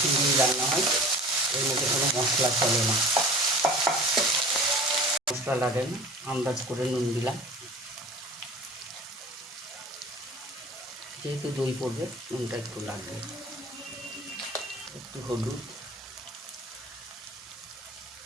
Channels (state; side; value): normal; both; correlation 0.42